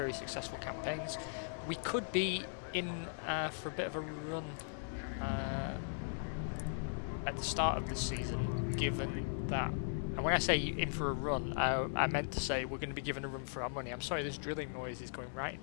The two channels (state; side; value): silent; right; 52 dB below the other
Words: successful campaigns. We could be in for a bit of a run at the start of the season, given that, and when I say in for a run, I meant to say we're going to be given a run for our money. I'm sorry, this drilling noise is going right